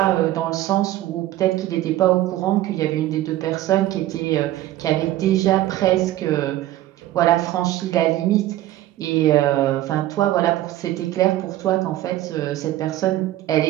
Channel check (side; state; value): left; quieter; 14.7 dB